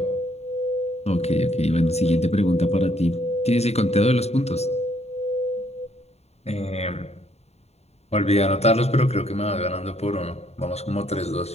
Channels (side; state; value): right; late; 0.31 ms